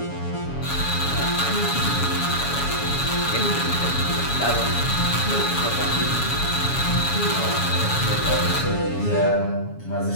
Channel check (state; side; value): late; right; 7.1 ms